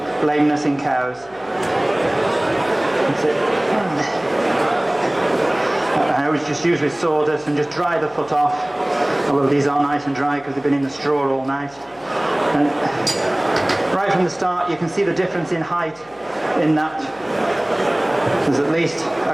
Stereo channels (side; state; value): left; noise; hum, 28 dB below the sound